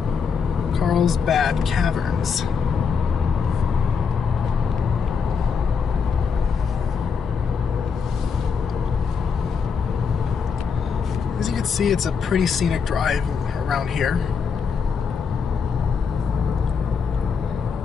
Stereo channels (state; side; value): quieter; right; 5.9 dB